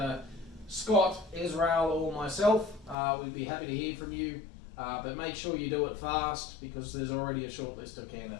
Scott, Israel, or myself. We'd be happy to hear from you, but make sure you do it fast because there's already a short list of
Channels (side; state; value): right; drops out; at 3.0 s